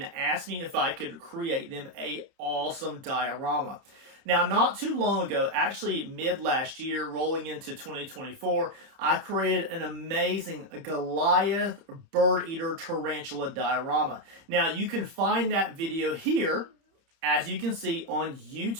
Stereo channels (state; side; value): late; left; 31 ms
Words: asked me if I could create them a awesome diorama. Now, not too long ago, actually mid last year, rolling into 2024, I created an amazing Goliath Birdeater tarantula diorama. Now, you can find that video here, as you can see, on